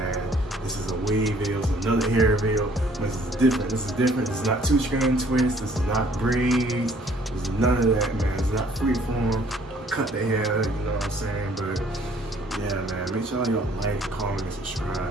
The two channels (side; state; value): both; normal; correlation 0.59